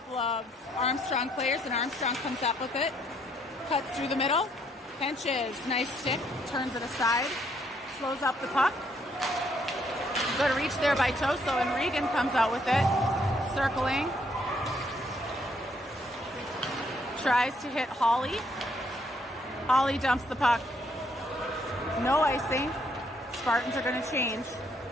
of Armstrong players, and Armstrong comes up with it. Cuts through the middle. Henches, nice stick, turns it aside. Slows up the puck. Good reach there by Toso, and Regan comes out with it. Circling. Tries to hit Hawley. Hawley dumps the puck. No icing. Spartans are going to change.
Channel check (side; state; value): both; normal; correlation 0.70